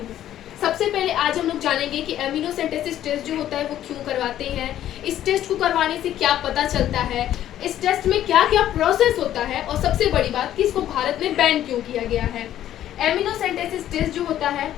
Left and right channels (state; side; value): quieter; right; 12.0 dB